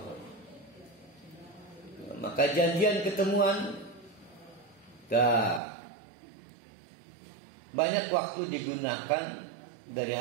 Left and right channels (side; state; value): left; drops out; at 5.6 s